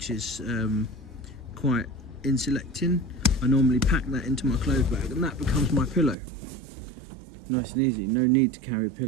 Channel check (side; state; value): left; drops out; at 6.2 s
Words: is quite insulating. I normally pack that into my clothes bag, and that becomes my pillow. Nice and easy, no need to carry a